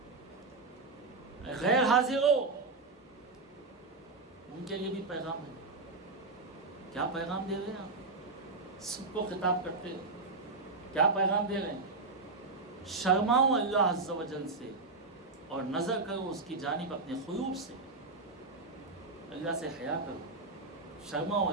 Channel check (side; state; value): left; quieter; 3.8 dB